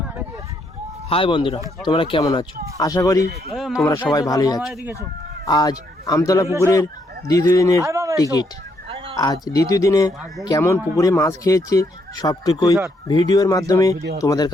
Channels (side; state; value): both; normal; correlation 0.74